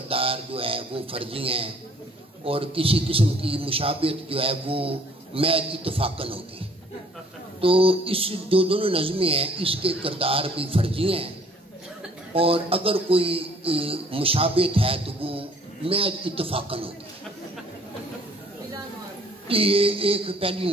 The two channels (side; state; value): both; normal; correlation 0.57